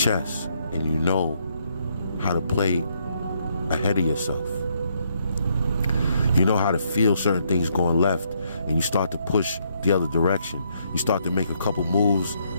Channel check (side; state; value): both; inverted; correlation -0.73